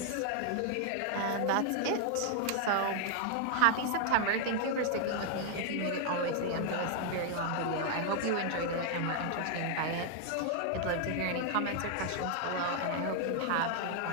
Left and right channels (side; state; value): both; different; correlation 0.00